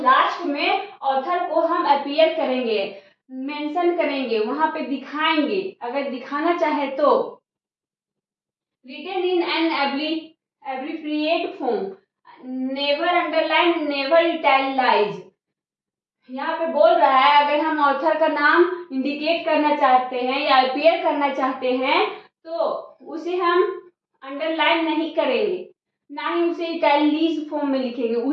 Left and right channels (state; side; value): identical; both; correlation 1.00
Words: में ऑथर को हम अपीयर करेंगे, मेंशन करेंगे, वहां पे दिखाएंगे अगर दिखाना चाहे तो। Written in an abbreviate form, never underline, never italicise. यहाँ पे बोल रहा है अगर हम ऑथर का नाम इंडिकेट करना चाहते हैं या अपीयर करना चाहते हैं तो उसे हम अंडरलाइन नहीं करेंगे, ना ही उसे इटैलिक फॉर्म में लिखेंगे,